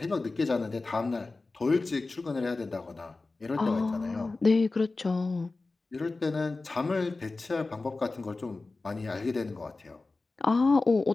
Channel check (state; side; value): quieter; right; 3.5 dB